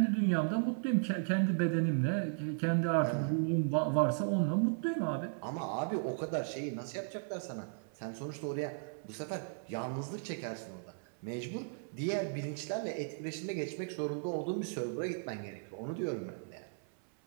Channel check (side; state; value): left; silent; 54 dB below the other